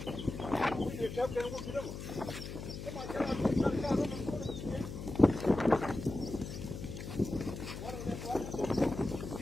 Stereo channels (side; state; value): left; noise; hum, 8 dB below the sound